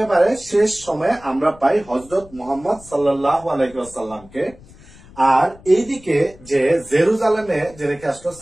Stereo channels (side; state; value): left; noise; rumble, 23 dB below the sound